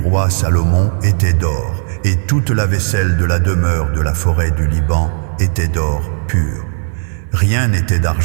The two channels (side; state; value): left; silent; 64 dB below the other